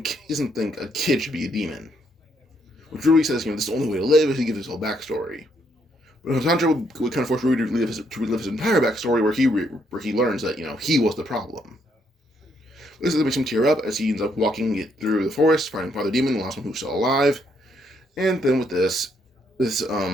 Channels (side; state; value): both; normal; correlation 0.73